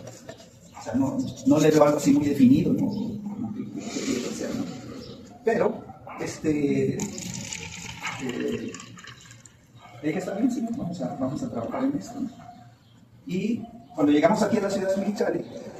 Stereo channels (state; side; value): identical; both; correlation 1.00